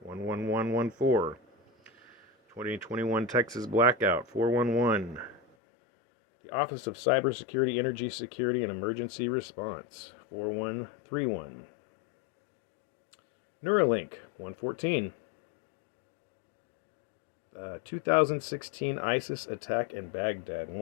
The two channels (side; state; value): right; drops out; at 5.4 s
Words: 11114. 2021 Texas Blackout, 411. The Office of Cybersecurity, Energy Security, and Emergency Response, 4131. Neuralink, 114. 2016 ISIS attack in Baghdad,